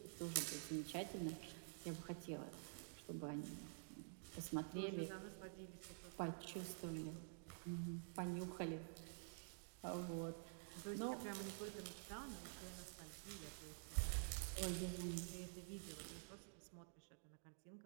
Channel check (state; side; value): silent; left; digital silence